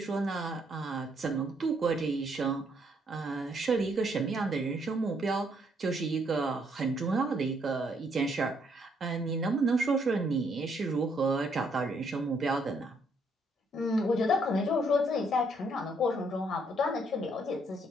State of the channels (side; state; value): both; normal; correlation 0.70